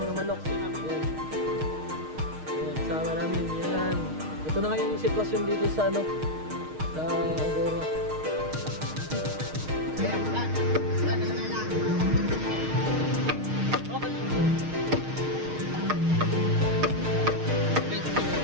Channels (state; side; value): late; left; 6.5 ms